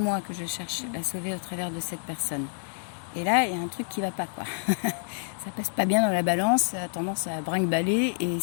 que je cherche à sauver au travers de cette personne. Et là, il y a un truc qui va pas, quoi. Ça passe pas bien dans la balance, ça a tendance à brinque-baller, et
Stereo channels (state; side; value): silent; right; digital silence